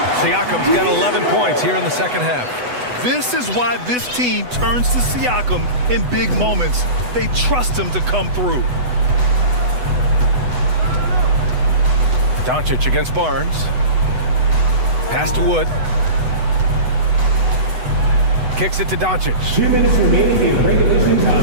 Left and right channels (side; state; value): left; late; 8.0 ms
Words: Siakam's got 11 points here in the second half. This is why this team turns to Siakam in big moments. They trust him to come through. Doncic against Barnes. Pass to Wood. Kicks it to Doncic. 2 minutes remaining in regulation